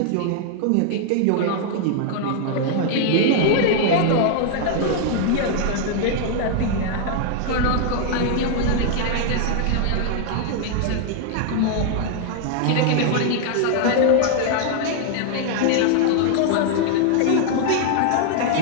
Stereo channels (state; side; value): different; both; correlation 0.00